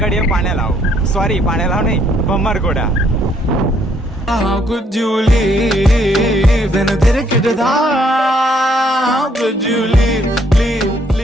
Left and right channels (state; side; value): normal; both; correlation 0.68